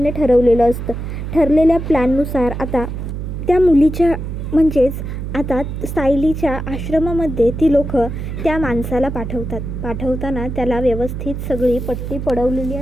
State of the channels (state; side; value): noise; right; hum, 6 dB below the sound